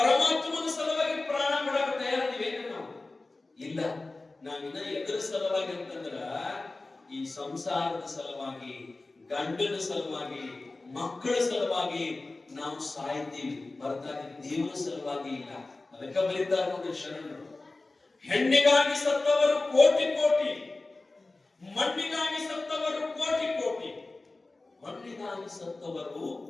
ಸಲುವಾಗಿ ಪ್ರಾಣ ಬಿಡಕ್ಕೆ ತಯಾರಿದ್ದೀವಿ ನಾವು ಇಲ್ಲ. ನಾವಿನ್ನ ಎದುರ ಸಲುವಾಗಿ ಅಂತಂದ್ರ ಈ ಸಂಸಾರದ ಸಲುವಾಗಿ, ಗಂಡನ ಸಲುವಾಗಿ, ಮಕ್ಕಳ ಸಲುವಾಗಿ ನಾವು ಸಾಯ್ತೀವಿ, ಹೊರತಾಗಿ ದೇವರ ಸಲುವಾಗಿ ಇಲ್ಲ. ಅದಕ್ಕೆ ಬರೀತಾರೆ ನೋಡಿ ಶರಣರು, ಹೆಣ್ಣಿಗಾಗಿ ಸತ್ತವರು ಕೋಟಿ ಕೋಟಿ, ಮಣ್ಣಿಗಾಗಿ ಸತ್ತವರು ಕೋಟಿ ಕೋಟಿ, ಮಣ್ಣಿಗಾಗಿ ಸತ್ತವರು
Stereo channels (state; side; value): quieter; right; 3.3 dB